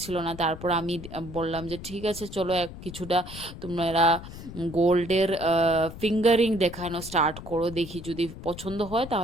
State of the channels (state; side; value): noise; left; rumble, 13 dB below the sound